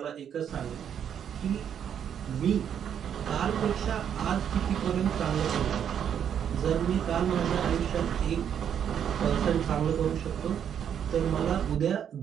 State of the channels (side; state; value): left; quieter; 8.7 dB